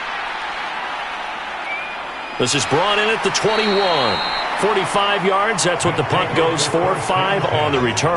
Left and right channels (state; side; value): identical; both; correlation 1.00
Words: This is brought in at the 21. 45 yards, that's what the punt goes for. 5 on the